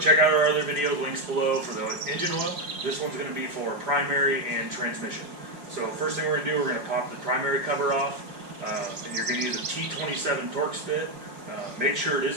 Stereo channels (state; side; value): late; left; 5.2 ms